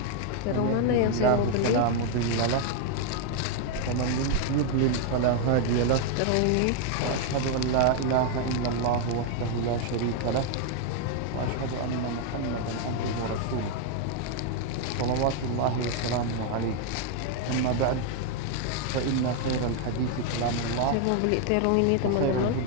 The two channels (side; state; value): both; different; correlation 0.00